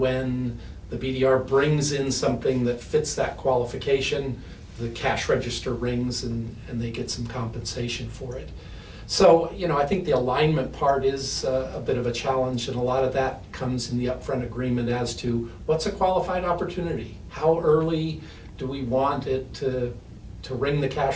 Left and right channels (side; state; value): both; identical; correlation 1.00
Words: the BDR brings in something that fits that qualification, the cash register rings and they get some compensation for it. So, I think the alignment part is a bit of a challenge, and a lot of that comes in the upfront agreement as to what's a qualified opportunity? How early do we want it to ring the